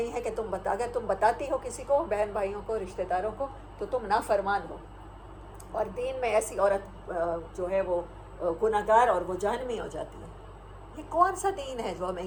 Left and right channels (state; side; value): identical; both; correlation 1.00